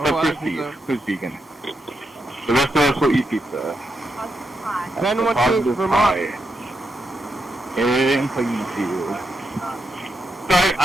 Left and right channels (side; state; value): both; normal; correlation 0.84